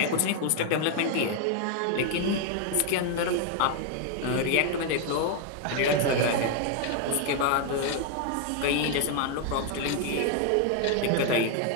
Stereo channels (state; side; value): different; both; correlation 0.01